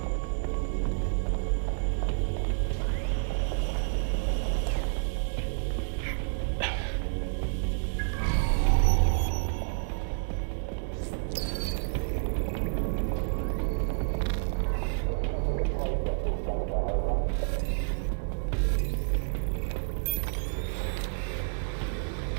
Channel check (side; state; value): left; silent; digital silence